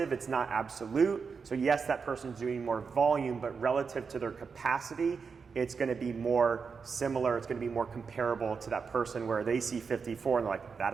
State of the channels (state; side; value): quieter; left; 5.5 dB